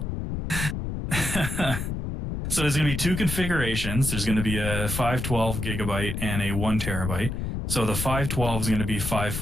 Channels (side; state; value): left; noise; rumble, 3 dB below the sound